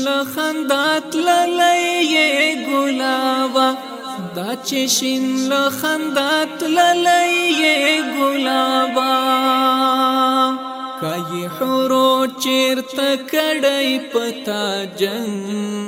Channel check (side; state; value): both; identical; correlation 1.00